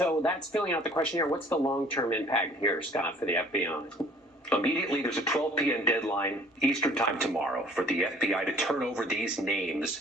that's filling out the questionnaire. What's the long-term impact here, Scott, for the FBI? Immediately, there's a 12 p.m. deadline Eastern time tomorrow for the FBI to turn over these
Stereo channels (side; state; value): both; normal; correlation 0.54